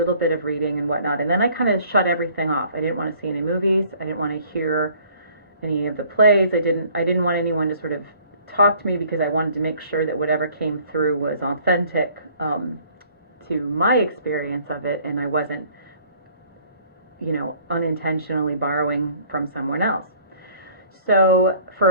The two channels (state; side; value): inverted; both; correlation -0.56